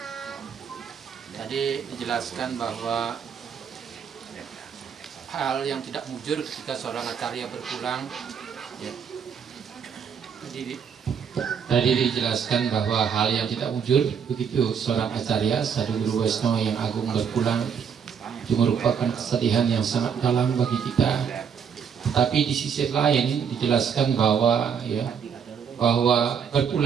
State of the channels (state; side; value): quieter; left; 7.2 dB